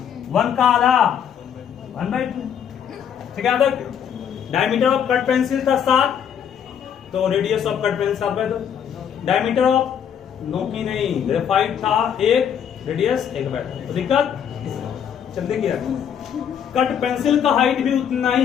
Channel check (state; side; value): quieter; right; 8.4 dB